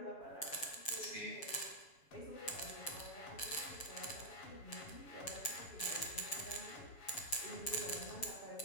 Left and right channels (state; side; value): late; right; 7.0 ms